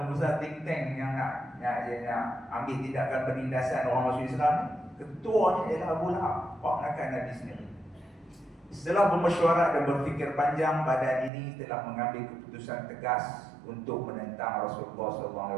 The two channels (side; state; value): left; drops out; at 11.3 s